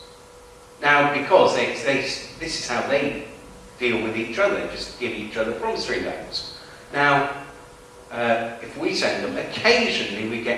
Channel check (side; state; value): both; identical; correlation 1.00